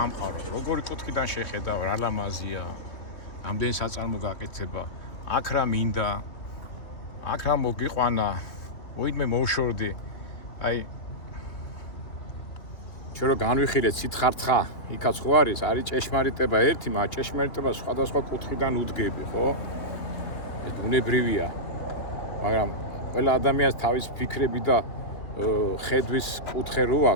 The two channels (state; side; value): late; right; 3.1 ms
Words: როგორი კუთხიდან შეხედავ, რა ლამაზია, რამდენი საწარმო გაკეთება, აქ რა მინდა, აქ რა მოგიყვანა, უიდმე მოვშორდი. აი ჩვენ რო განვიხილეთ სითხარცხა, იქაც ხო არის ჭეშმარიტება ერთი, მაგრამ ჭეშმარიტება სხვადასხვა კუთხიდან უდგები, ხო? ეს ბუნებრივია. მაგრამ ყველა ადამიანს თავის ფიქრები და ხედვის კუთხე რო